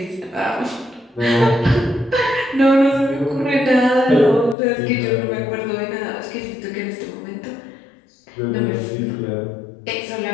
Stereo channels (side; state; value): right; drops out; at 4.5 s